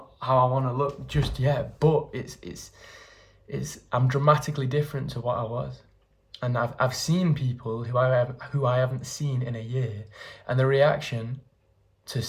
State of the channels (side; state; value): both; identical; correlation 1.00